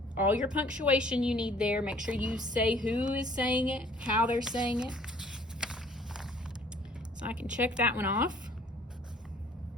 all your punctuation you need there. Make sure you say who is saying it, how they're saying it. So I can check that one off.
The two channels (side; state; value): both; normal; correlation 0.56